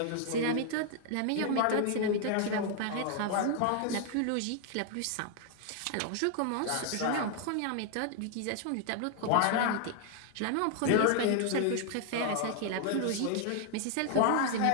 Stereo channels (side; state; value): both; different; correlation 0.00